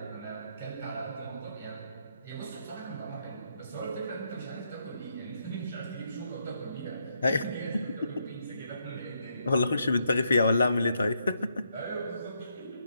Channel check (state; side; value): inverted; both; correlation -0.77